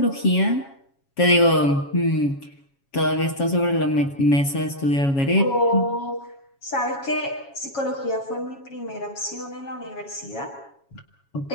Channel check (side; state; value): right; late; 7.2 ms